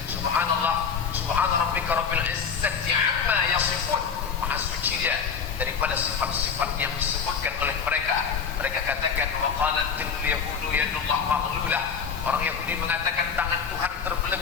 Subhanallah, daripada sifat-sifat yang disebutkan oleh mereka. Mereka katakan wa qalatil yahudu yadullah maghlulah. Orang Yahudi mengatakan tangan Tuhan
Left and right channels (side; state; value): right; quieter; 6.5 dB